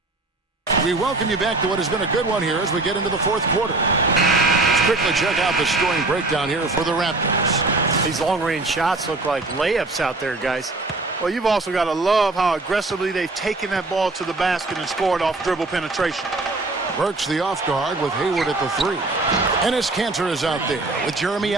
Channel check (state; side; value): quieter; left; 3.2 dB